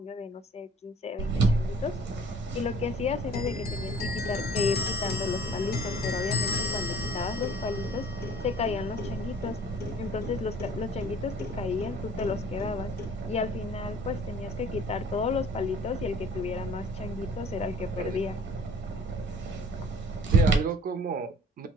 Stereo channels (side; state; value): both; normal; correlation 0.50